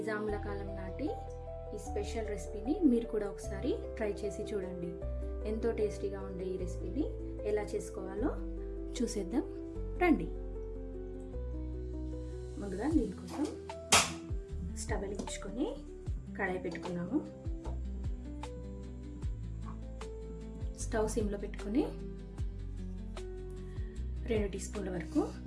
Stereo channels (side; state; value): both; identical; correlation 1.00